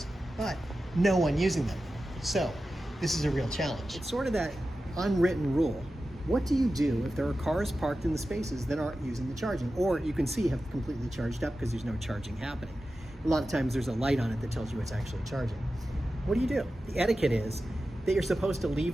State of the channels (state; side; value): normal; both; correlation 0.93